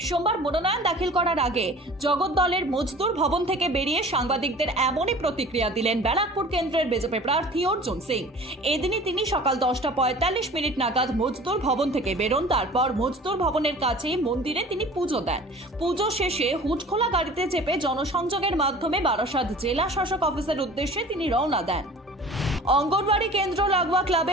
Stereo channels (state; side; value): normal; both; correlation 0.44